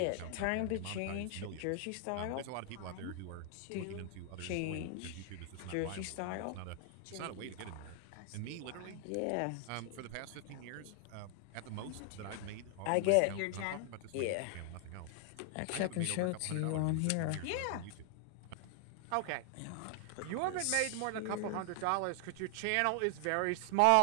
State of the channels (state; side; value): different; both; correlation 0.00